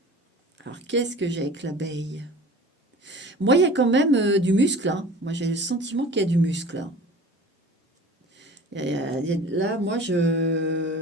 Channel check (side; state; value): both; normal; correlation 0.42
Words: Alors, qu'est-ce que j'ai avec l'abeille? Moi, il y a quand même du muscle, hein. Moi, j'ai le sentiment qu'il y a du muscle, hein. Là, moi,